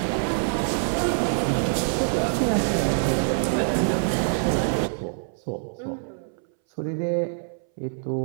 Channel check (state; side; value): silent; left; 62 dB below the other